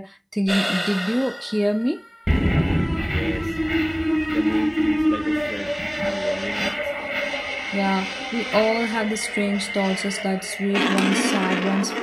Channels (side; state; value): both; identical; correlation 1.00